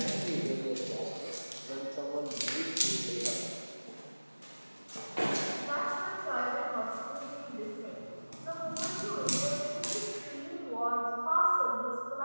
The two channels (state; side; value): inverted; both; correlation -1.00